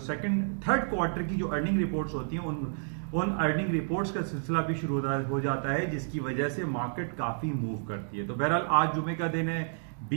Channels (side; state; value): left; silent; digital silence